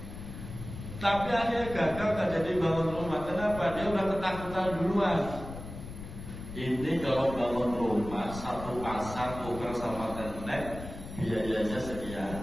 Tapi akhirnya gagal tak jadi bangun rumah. Kenapa? Dia udah ketakutan duluan. Ini kalau bangun rumah satu pasang tukar sama tenek biayanya sekian.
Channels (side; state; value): left; noise; rumble, 11 dB below the sound